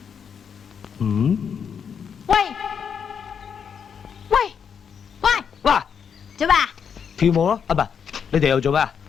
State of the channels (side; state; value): right; quieter; 7.1 dB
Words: 喂喂喂，嗱，做咩啊？跳舞咯，啊唔係，你哋又做咩啊？